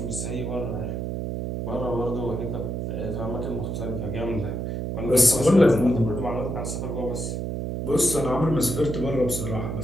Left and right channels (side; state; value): right; noise; hum, 3 dB below the sound